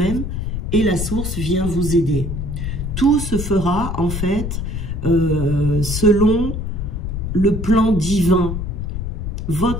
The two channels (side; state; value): left; noise; rumble, 3 dB below the sound